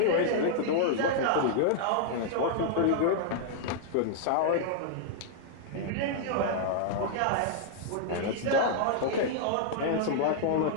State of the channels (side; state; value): both; different; correlation -0.01